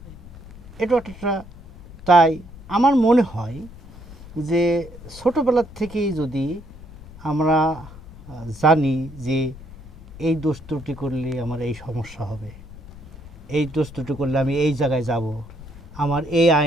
এটা একটা, তাই আমার মনে হয় যে ছোটোবেলার থেকেই যদি আমরা জানি যে এই দোষ ত্রুটি করলে আমার এই সমস্যা হবে, এই দোষ ত্রুটি করলে আমি এই জায়গায় যাব, আমার এই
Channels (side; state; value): left; noise; rumble, 17 dB below the sound